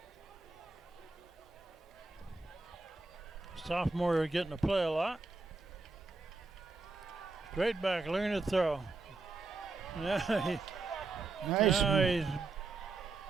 Sophomore getting to play a lot. Straight back, looking to throw. Now he's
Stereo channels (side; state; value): left; quieter; 3.7 dB